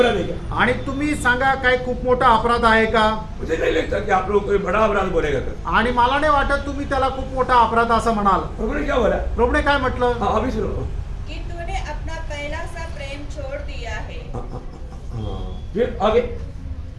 है क्या? आणि तुम्ही सांगा काय खूप मोठा अपराध आहे का? मुझे नहीं लगता कि आप लोग कोई बड़ा अपराध बोलेगा कर। आणि मला नाही वाटत तुम्ही त्याला खूप मोठा अपराध असं म्हणाल. प्रभु ने क्या बोला? प्रभूने काय म्हटलं? हाँ अभी सुनो। कि तूने अपना पहला सा प्रेम छोड़ दिया है। फिर आगे।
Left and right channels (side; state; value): both; identical; correlation 1.00